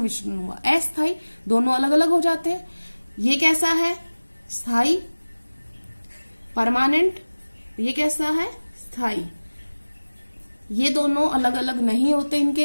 हुआ? अस्थाई, दोनों अलग अलग हो जाते हैं। ये कैसा है? स्थाई, परमानेंट। ये कैसा है? स्थाई। ये दोनों अलग अलग नहीं होते,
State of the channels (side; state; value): both; inverted; correlation -1.00